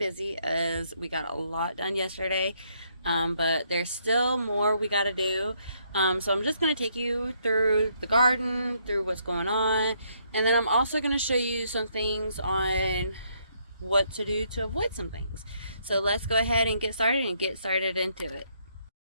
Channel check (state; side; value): inverted; both; correlation -0.72